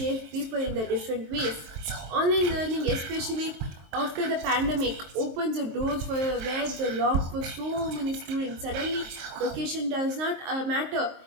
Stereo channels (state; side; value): late; left; 23 ms